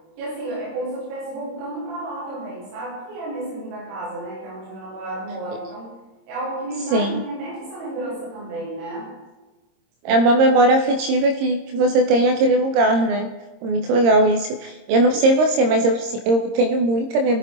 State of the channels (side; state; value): left; late; 26 ms